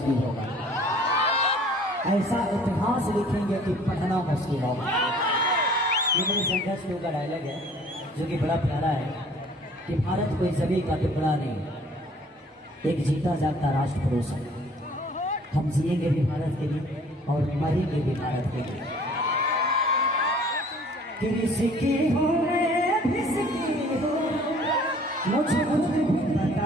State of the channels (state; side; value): normal; both; correlation 0.53